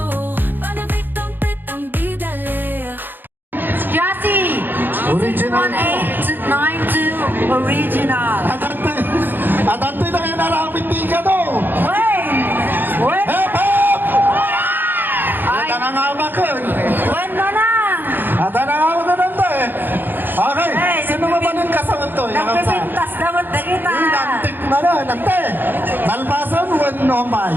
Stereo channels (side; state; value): left; late; 0.093 ms